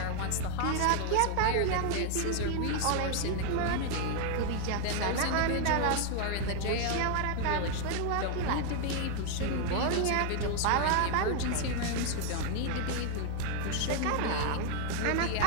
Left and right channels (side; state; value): both; different; correlation 0.00